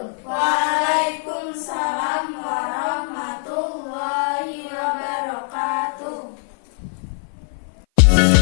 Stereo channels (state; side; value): silent; right; 55 dB below the other